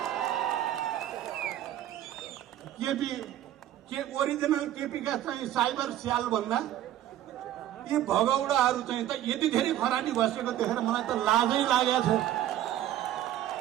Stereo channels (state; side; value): quieter; left; 12.6 dB